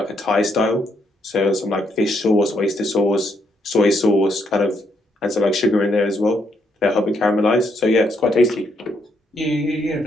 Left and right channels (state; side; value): normal; both; correlation 0.75